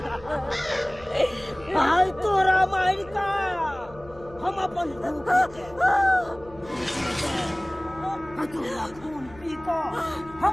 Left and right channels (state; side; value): noise; left; hum, 21 dB below the sound